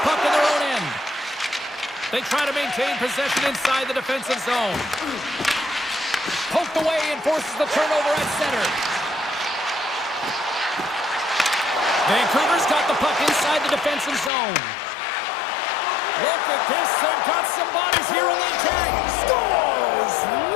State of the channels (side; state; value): right; drops out; at 14.3 s